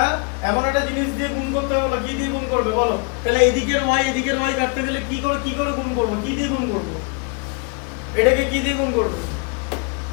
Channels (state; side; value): quieter; right; 33.0 dB